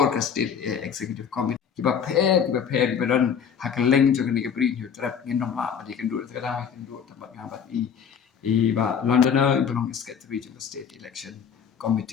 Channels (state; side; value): quieter; right; 7.4 dB